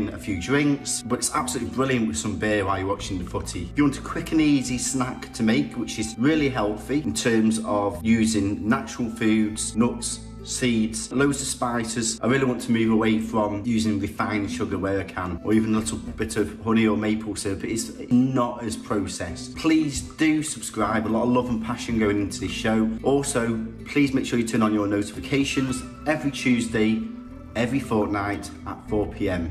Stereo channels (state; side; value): identical; both; correlation 1.00